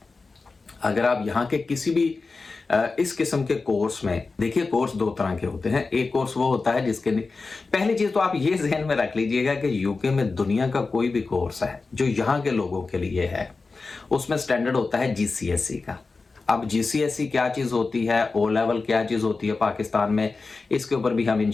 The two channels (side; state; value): right; quieter; 4.0 dB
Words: अगर आप यहाँ के किसी भी इस किस्म के कोर्स में देखिए, कोर्स 2 तरह के होते हैं। एक कोर्स वो होता है जिसके पहली चीज तो आप ये जहन में रख लीजिएगा कि यूके में दुनिया का कोई भी कोर्स है जो यहाँ के लोगों के लिए है, उसमें स्टैंडर्ड होता है जीसीएसई का। अब जीसीएसई क्या चीज होती है, ओ लेवल क्या चीज होती है पाकिस्तान में, इसके ऊपर भी हम